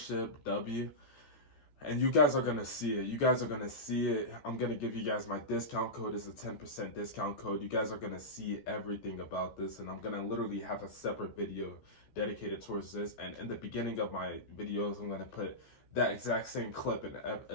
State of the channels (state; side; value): late; right; 14 ms